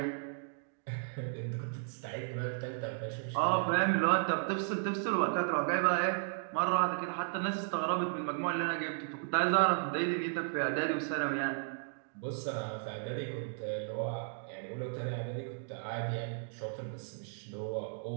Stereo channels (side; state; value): left; silent; digital silence